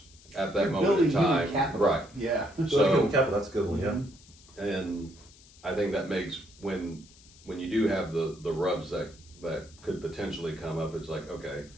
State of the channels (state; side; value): noise; left; hiss, 24 dB below the sound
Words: at that moment in time. Capital. Right. Yeah. So human capital, that's a good one, yeah. And I think that makes, when you do have the rubs that could potentially come up, it's like, okay,